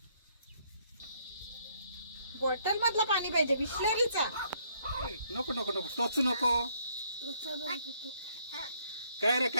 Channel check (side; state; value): both; inverted; correlation -0.68